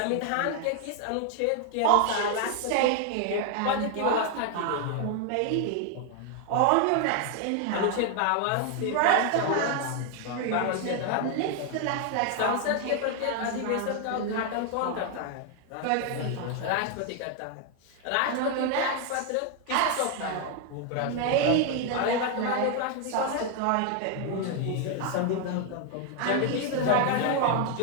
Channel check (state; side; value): different; both; correlation 0.00